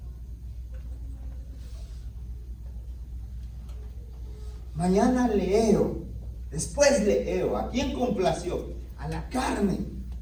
Mañana leo, después leo. ¿A quién complació? A la carne.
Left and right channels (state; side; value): identical; both; correlation 1.00